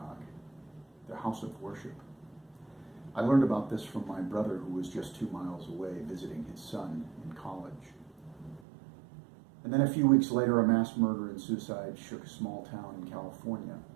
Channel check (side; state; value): left; drops out; at 8.6 s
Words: their house of worship. I learned about this from my brother, who was just 2 miles away visiting his son in college. And then a few weeks later, a mass murder and suicide shook a small town in California.